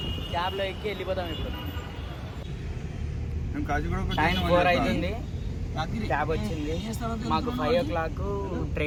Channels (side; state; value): both; identical; correlation 1.00